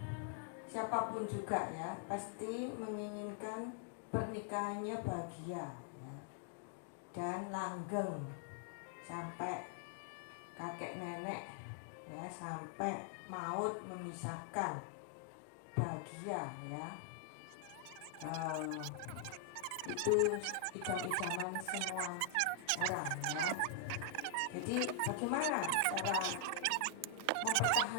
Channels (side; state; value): both; different; correlation 0.00